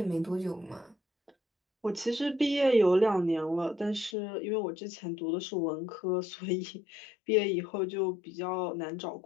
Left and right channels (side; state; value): right; drops out; at 4.2 s